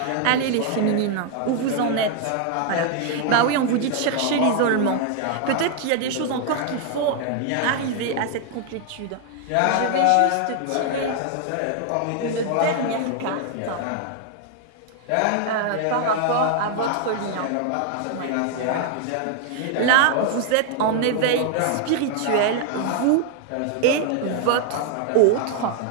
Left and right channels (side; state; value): both; different; correlation 0.00